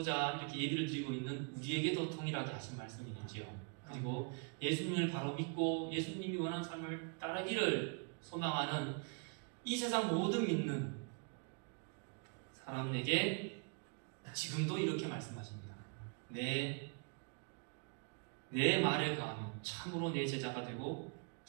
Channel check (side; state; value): left; quieter; 37.4 dB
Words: 이렇게 예배를 드리고 있는 우리에게도 통일하게 하신 말씀이지요. 그리고 예수님을 바로 믿고 예수님이 원하는 삶을 따르기를 소망하는 이 세상 모든 믿는 사람에게 지금도 이렇게 말씀하십니다. 내 말에 가면 참으로 내 제자가 되고